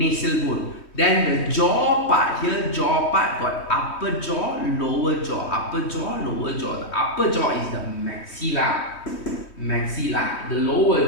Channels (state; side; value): late; right; 3.2 ms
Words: bone. Then the jaw part here, got upper jaw, lower jaw, lower jaw. The upper jaw is the maxilla. The